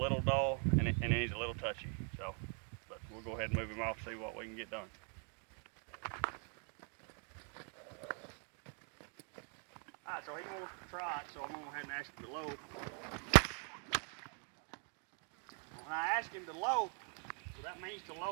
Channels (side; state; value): left; quieter; 39.5 dB